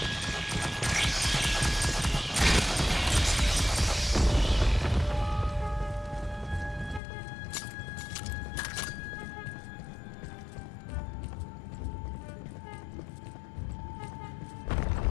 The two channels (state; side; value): drops out; right; at 7.0 s